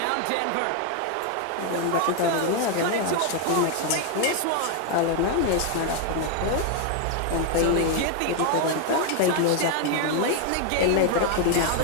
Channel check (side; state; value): both; different; correlation 0.01